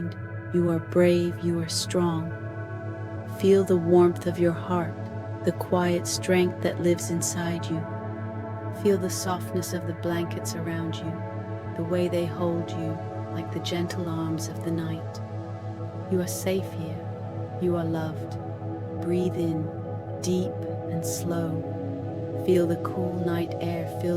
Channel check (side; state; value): both; identical; correlation 1.00